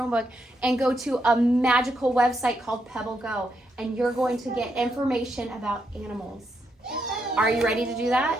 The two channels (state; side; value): normal; both; correlation 0.80